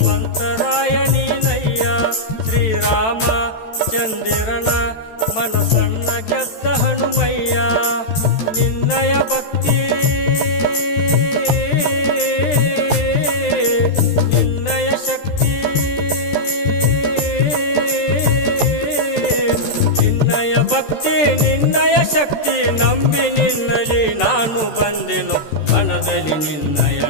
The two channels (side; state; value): right; late; 13 ms